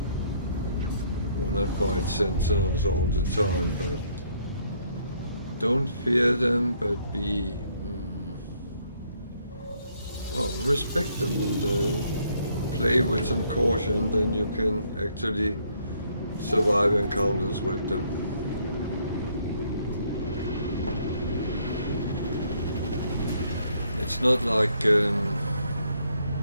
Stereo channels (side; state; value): both; inverted; correlation -0.68